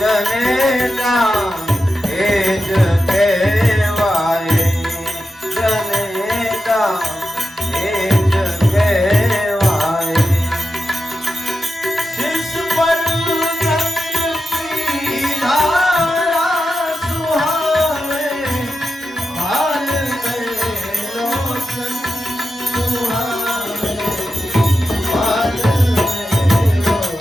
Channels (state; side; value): normal; both; correlation 0.90